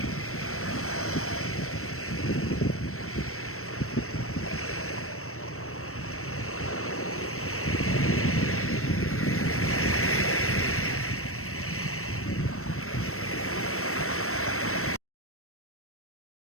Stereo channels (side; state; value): right; late; 0.63 ms